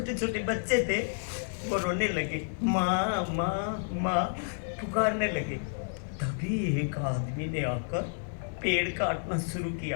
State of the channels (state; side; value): silent; right; digital silence